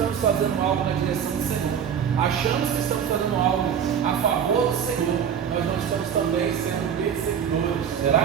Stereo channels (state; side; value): quieter; left; 8.1 dB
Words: fazendo algo na direção do Senhor, achamos que estamos fazendo algo a favor do Senhor, nós não estamos também sendo perseguidores.